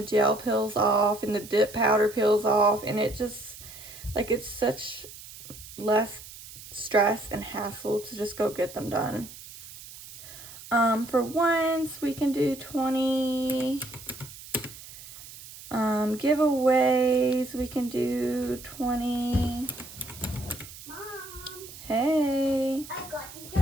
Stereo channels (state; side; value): noise; right; hiss, 16 dB below the sound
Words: gel peels off, and the dip powder peels off, and it just, like, it's such less stress and hassle to just go get them done. For once, we can do 20. Giveaways, we can do 20. Mom. Hey. I got you